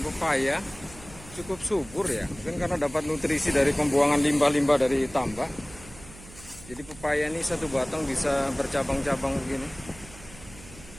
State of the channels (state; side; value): noise; right; hum, 19 dB below the sound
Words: pepaya. Cukup subur ya, mungkin karena dapat nutrisi dari pembuangan limbah-limbah dari tambak. Jadi pepaya ini satu batang bisa bercabang-cabang begini.